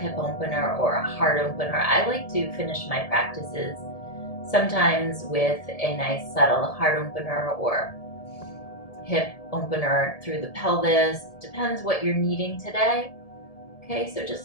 opener or a heart opener. I like to finish my practices sometimes with a nice subtle heart opener or hip opener through the pelvis. Depends what you're needing today. Okay, so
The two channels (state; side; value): late; right; 1.7 ms